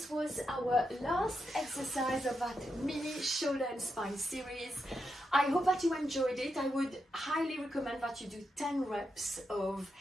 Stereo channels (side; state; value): both; normal; correlation 0.85